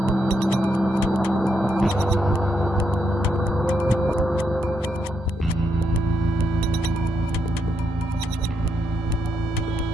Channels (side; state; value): both; normal; correlation 0.79